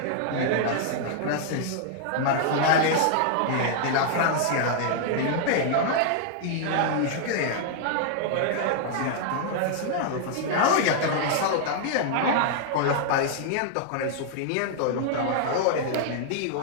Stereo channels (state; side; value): different; both; correlation -0.01